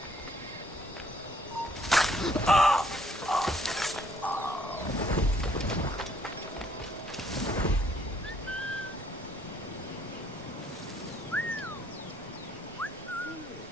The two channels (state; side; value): normal; both; correlation 0.65